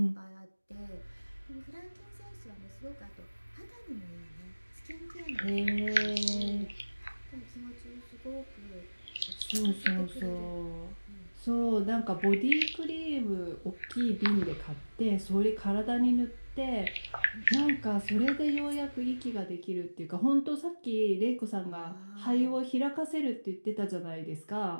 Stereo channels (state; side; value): inverted; both; correlation -1.00